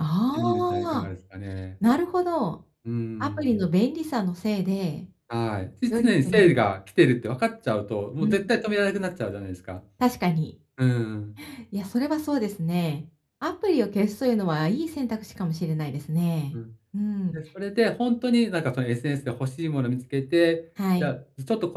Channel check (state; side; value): identical; both; correlation 1.00